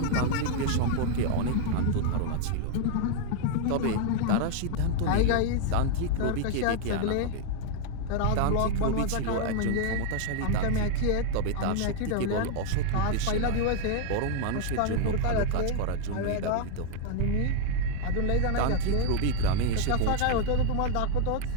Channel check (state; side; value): different; both; correlation 0.00